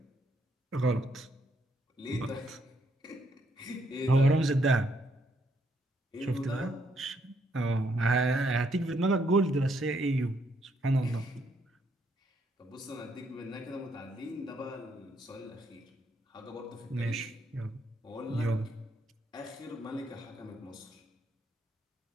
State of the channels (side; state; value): both; normal; correlation 0.73